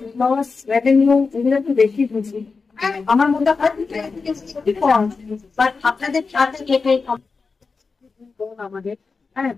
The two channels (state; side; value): quieter; right; 4.6 dB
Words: লস রেভিনিউ এগুলো একটু বেশি বুঝি। আমার মধ্যে আপনাদের সাথে আমাদের